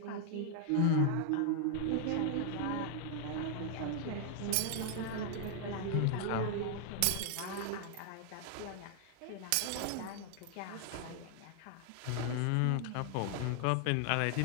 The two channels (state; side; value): different; both; correlation 0.00